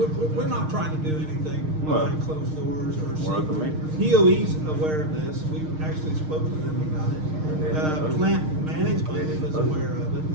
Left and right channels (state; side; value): late; left; 6.5 ms